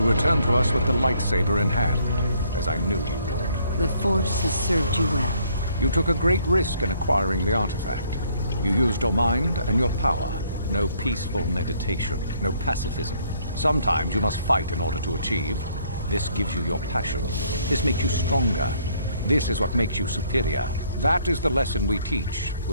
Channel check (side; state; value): both; inverted; correlation -0.65